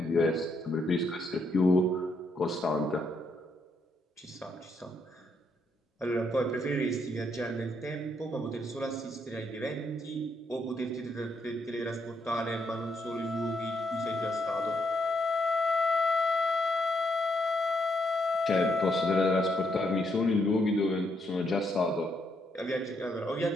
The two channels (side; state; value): both; normal; correlation 0.76